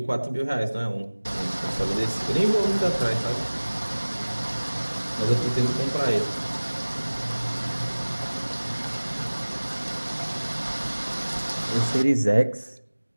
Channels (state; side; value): inverted; both; correlation -1.00